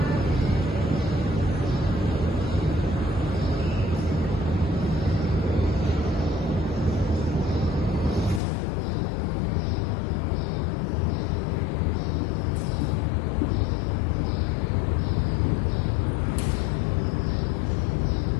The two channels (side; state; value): right; drops out; at 8.4 s